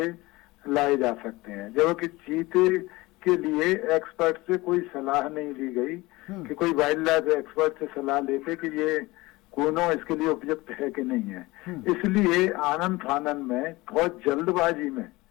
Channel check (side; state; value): right; quieter; 21.0 dB